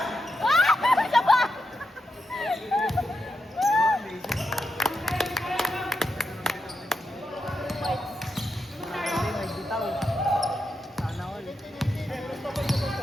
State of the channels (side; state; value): both; normal; correlation 0.85